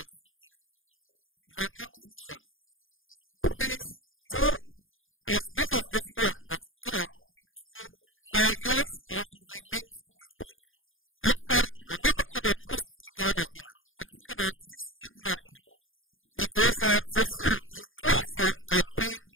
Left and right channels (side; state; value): right; late; 0.59 ms